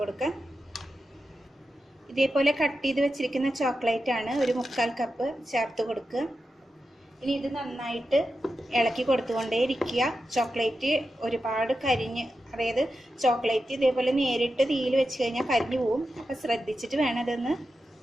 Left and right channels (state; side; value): normal; both; correlation 0.90